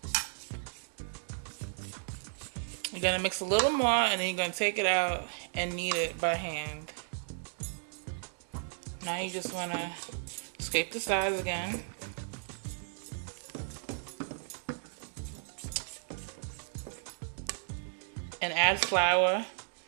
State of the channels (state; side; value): silent; left; digital silence